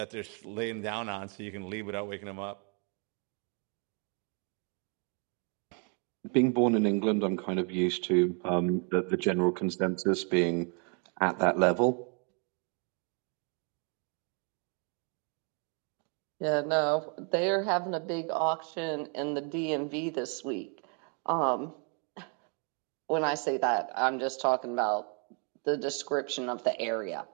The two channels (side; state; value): left; quieter; 38.8 dB